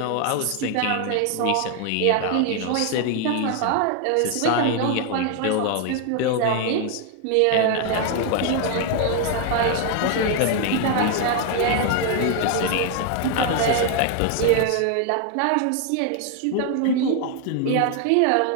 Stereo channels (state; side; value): different; both; correlation 0.00